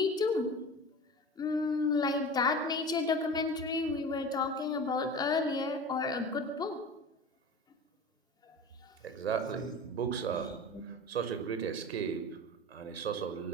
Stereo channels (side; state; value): both; normal; correlation 0.34